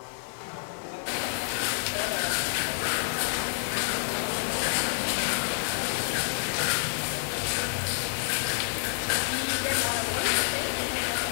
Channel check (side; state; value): right; silent; digital silence